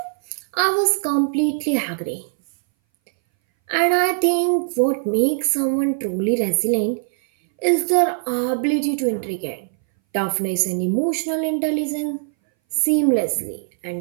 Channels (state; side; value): silent; left; 61 dB below the other